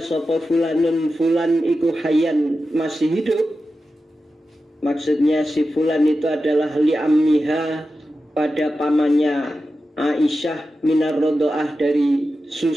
sopo fulanun, fulan iku hayan, masih hidup, maksudnya si fulan itu adalah li ammiha, pada pamannya Aisyah, minar rodoah, dari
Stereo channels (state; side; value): normal; both; correlation 0.92